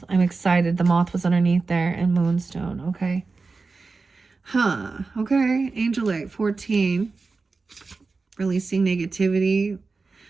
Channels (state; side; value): quieter; left; 4.1 dB